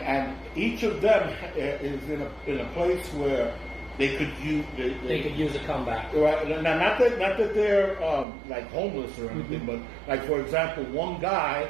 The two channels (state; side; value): drops out; left; at 8.2 s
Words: each of them is in a place where they could use they could use a comeback. Right. Now, not that they're like homeless or anything, Mm-hmm. but like for example, one guy,